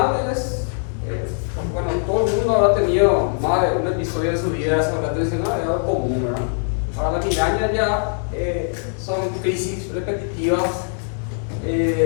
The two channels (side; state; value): right; silent; 65 dB below the other